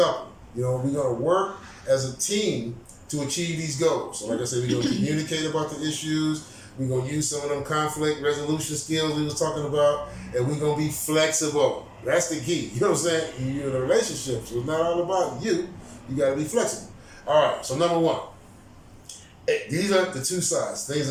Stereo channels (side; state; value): both; identical; correlation 1.00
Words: We're going to work as a team to achieve these goals. So like I said, we're going to communicate about the issues. We're going to use some of them conflict resolution skills we was talking about, and we're going to be flexible. That's the key. You know what I'm saying? You're in a relationship, so it's not all about you. You got to be flexible. All right, so number one, these are the two sides. Things